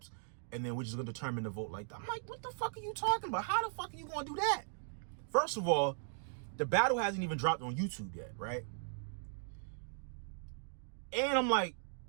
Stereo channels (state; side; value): silent; left; digital silence